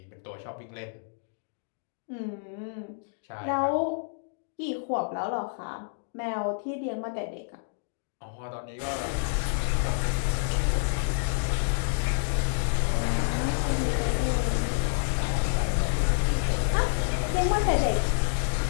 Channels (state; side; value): silent; right; digital silence